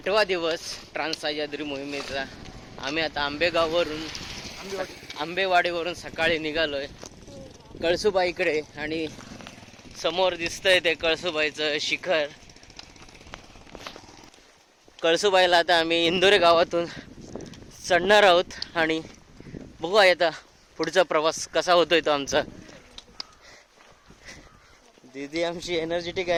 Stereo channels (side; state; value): both; identical; correlation 1.00